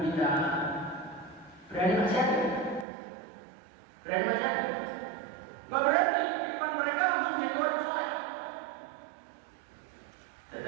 kita, berani maksiat? Berani maksiat? Nggak berani. Di depan mereka langsung jadi orang soleh.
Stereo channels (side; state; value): left; drops out; at 2.9 s